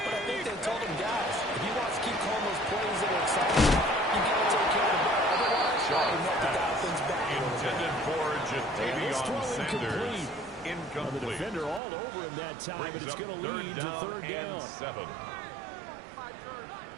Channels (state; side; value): drops out; left; at 11.8 s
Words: I think they told him, guys, if he wants to keep calling throw incomplete. Incomplete. The defender all over him that time, but it's going to lead to third down. 7.